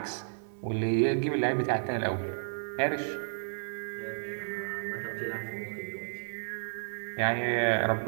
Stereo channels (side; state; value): left; silent; digital silence